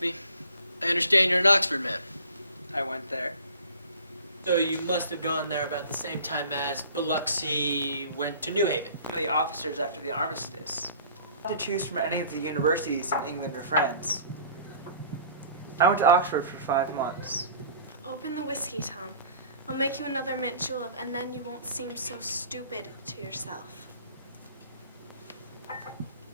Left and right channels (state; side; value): inverted; both; correlation -0.48